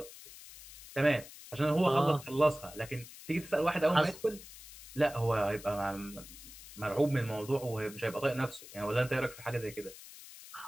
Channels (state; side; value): noise; left; hiss, 16 dB below the sound